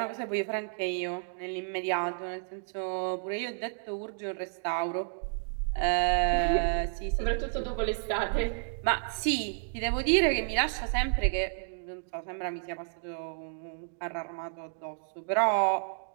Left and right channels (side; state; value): left; silent; digital silence